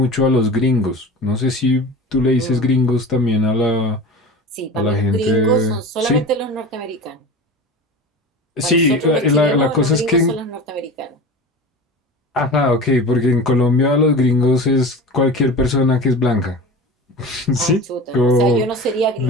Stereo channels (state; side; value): normal; both; correlation 0.33